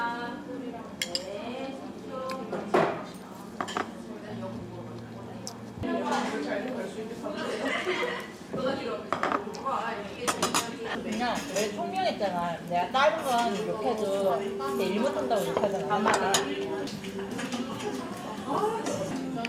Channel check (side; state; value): both; identical; correlation 1.00